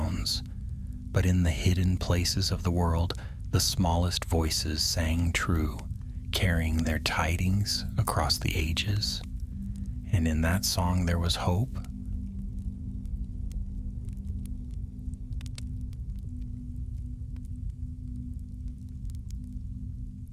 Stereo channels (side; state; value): both; identical; correlation 1.00